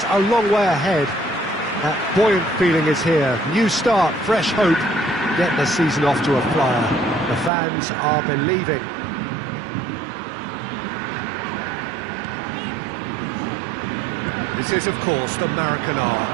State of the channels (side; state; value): left; drops out; at 7.5 s